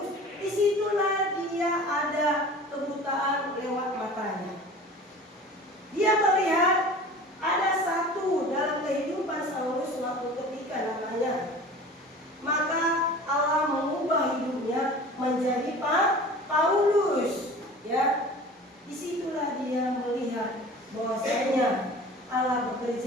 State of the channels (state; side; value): normal; both; correlation 0.41